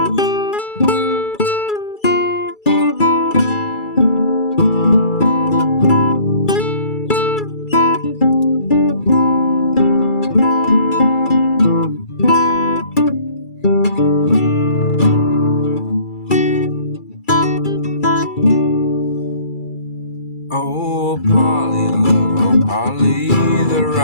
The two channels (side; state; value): right; late; 2.3 ms